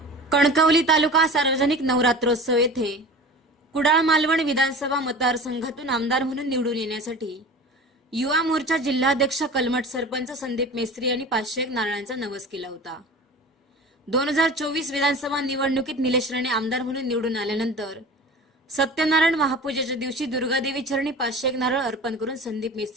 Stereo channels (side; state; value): both; normal; correlation 0.36